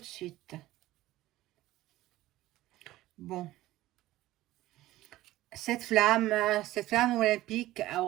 suite. Bon. Cette flamme olympique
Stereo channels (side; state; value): left; quieter; 16.2 dB